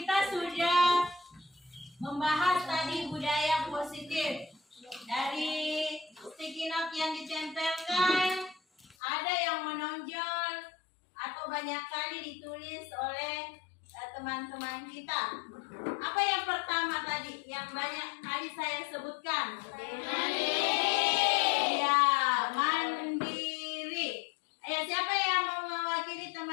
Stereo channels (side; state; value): right; drops out; at 9.0 s